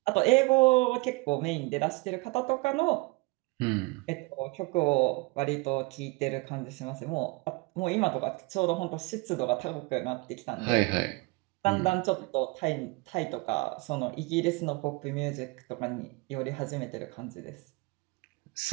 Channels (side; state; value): left; quieter; 25.6 dB